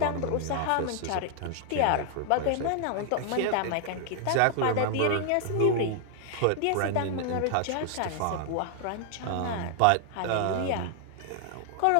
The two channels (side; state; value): both; different; correlation 0.00